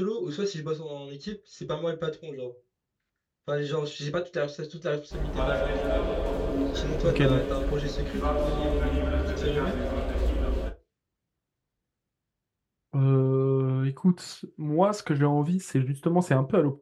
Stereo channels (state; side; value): identical; both; correlation 1.00